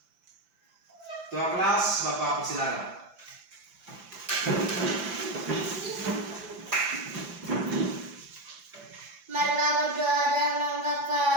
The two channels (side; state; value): left; late; 5.9 ms